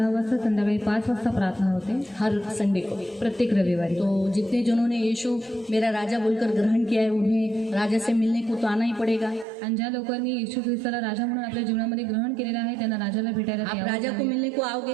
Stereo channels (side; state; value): left; drops out; at 9.5 s